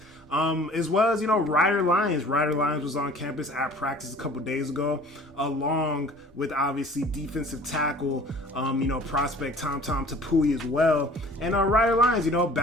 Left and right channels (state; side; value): normal; both; correlation 0.48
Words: As well as, Ryder Lyons. Ryder Lyons was on campus at practice a couple days ago, along with obviously defensive tackle, prospect Tom Tapui as well. And Ryder Lyons,